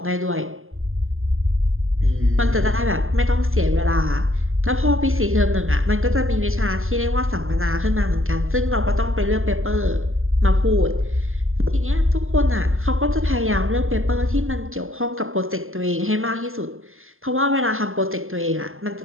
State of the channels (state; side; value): late; left; 0.60 ms